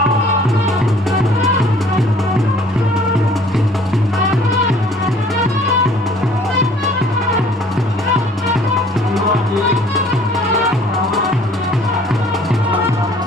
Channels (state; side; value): normal; both; correlation 0.55